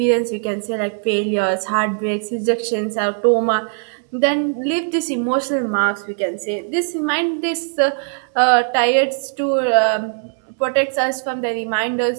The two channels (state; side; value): silent; left; 65 dB below the other